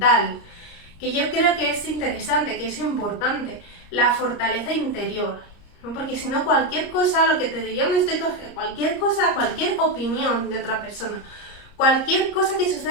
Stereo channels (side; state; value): right; late; 30 ms